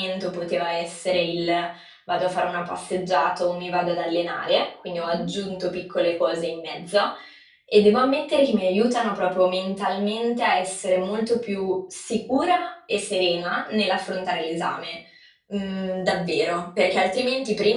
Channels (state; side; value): identical; both; correlation 1.00